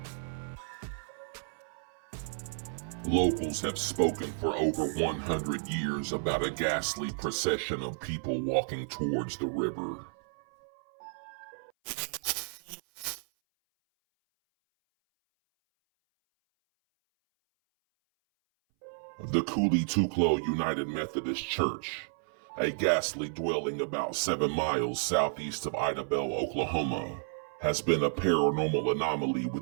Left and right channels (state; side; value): silent; left; 57 dB below the other